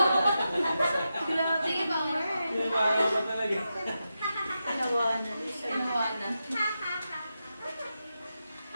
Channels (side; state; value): both; inverted; correlation -0.89